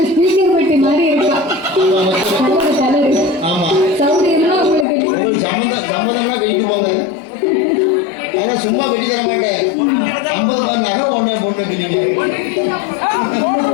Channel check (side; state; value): right; drops out; at 4.9 s